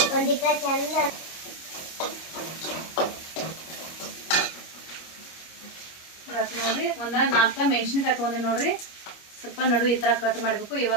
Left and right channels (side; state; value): right; late; 25 ms